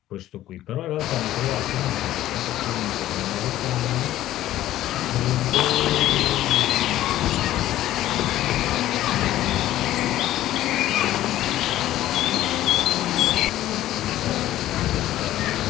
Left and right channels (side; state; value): right; quieter; 13.9 dB